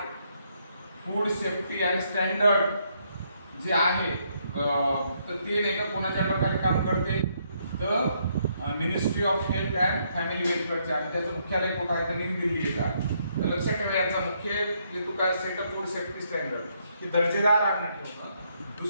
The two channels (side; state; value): both; inverted; correlation -0.73